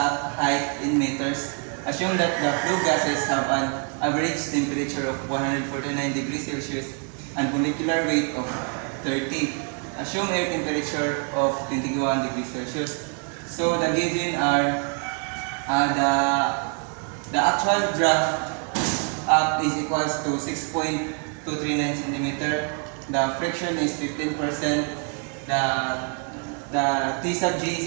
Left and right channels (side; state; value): left; quieter; 37.5 dB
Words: height in meters. Assume that the flue gases have an average temperature of 149 degrees Celsius and molecular weight of 30. Assume air temperature of 21 degrees Celsius. So the given are the actual draft up is equals to 6.239 centimeter. The friction is 15%. The T sub G